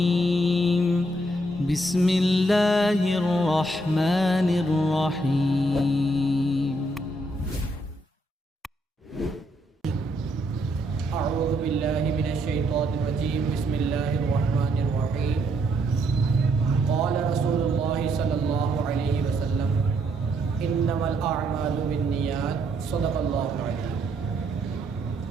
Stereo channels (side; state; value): both; normal; correlation 0.74